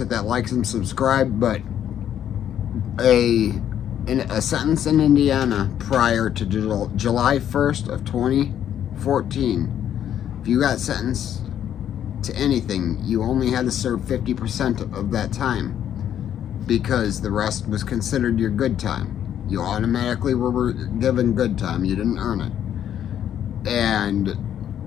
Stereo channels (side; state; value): right; quieter; 10.1 dB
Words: that like and subscribe. But a sentence in Indiana prior to July 1st of 2014, if you got sentenced to anything, you only had to serve 50% of that time, because the rest was considered your good time. You automatically were given good time. You didn't earn it. And